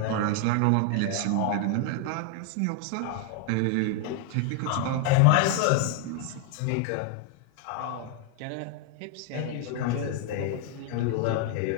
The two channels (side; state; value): both; different; correlation 0.00